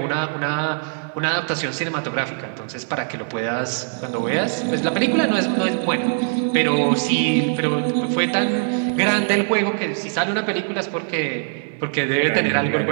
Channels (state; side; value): silent; left; digital silence